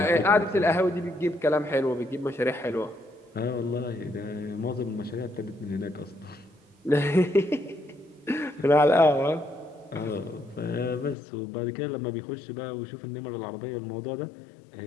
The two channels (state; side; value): drops out; right; at 11.2 s